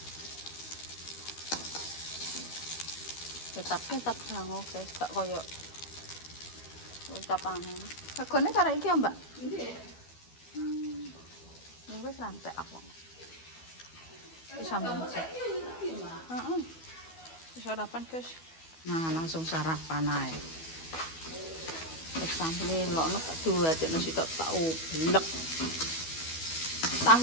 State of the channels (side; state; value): right; late; 12 ms